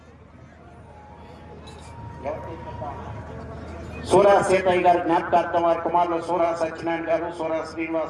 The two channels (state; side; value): identical; both; correlation 1.00